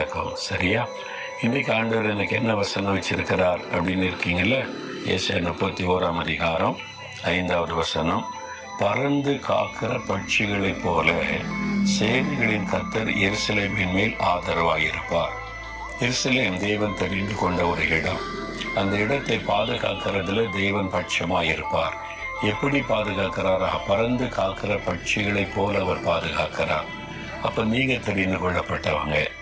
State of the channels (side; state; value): both; identical; correlation 1.00